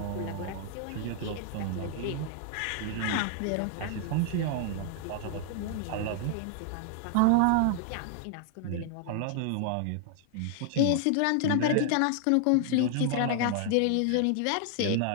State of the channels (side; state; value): both; different; correlation 0.00